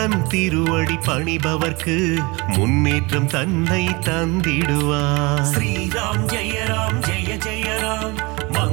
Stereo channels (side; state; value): left; quieter; 25.8 dB